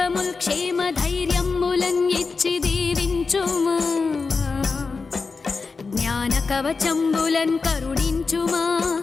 క్షేమ ధైర్యములన్ ఇచ్చి దీవించుమా జ్ఞాన కవచంబులన్ కరుణించుమా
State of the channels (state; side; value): quieter; right; 4.5 dB